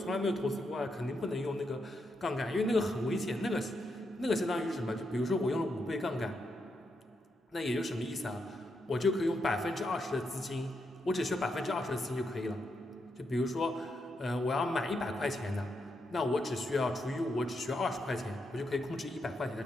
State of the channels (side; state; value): both; normal; correlation 0.82